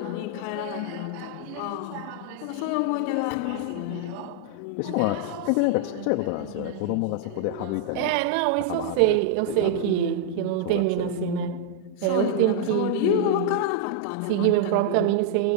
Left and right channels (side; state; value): both; different; correlation -0.01